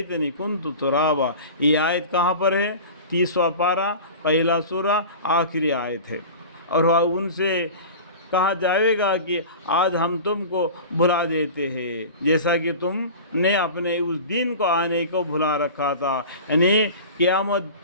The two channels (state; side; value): inverted; both; correlation -0.35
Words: کنت ترابا۔ یہ آیت کہاں پر ہے؟ 30واں پارہ، پہلا سورہ، آخری آیت ہے۔ اور ان سے کہا جائے گا کہ آج ہم تم کو بھلا دیتے ہیں، جیسا کہ تم نے اپنے اس دن کو آنے کو بھلا رکھا تھا، یعنی قیامت